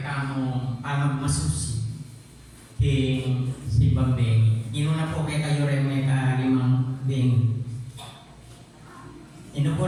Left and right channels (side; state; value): both; identical; correlation 1.00